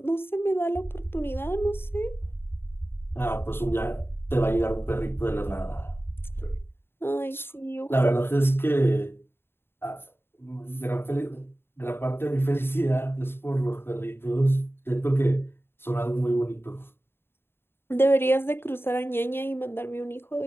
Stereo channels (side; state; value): right; late; 0.11 ms